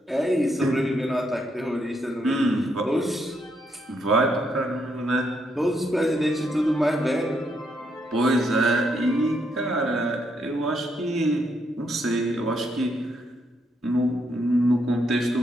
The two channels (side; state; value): both; normal; correlation 0.76